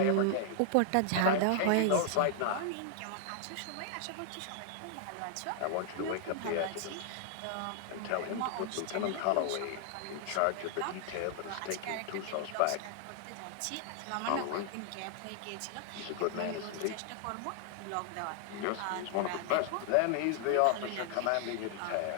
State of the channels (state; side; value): different; both; correlation 0.00